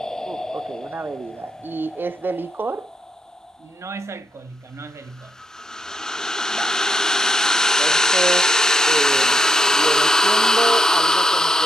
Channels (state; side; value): normal; both; correlation 0.79